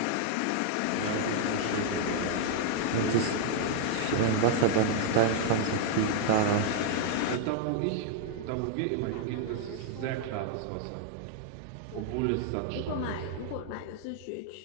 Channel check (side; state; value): both; different; correlation 0.00